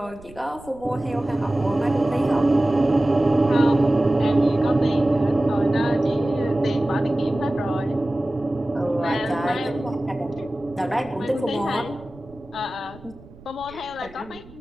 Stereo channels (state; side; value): noise; right; rumble, 21 dB below the sound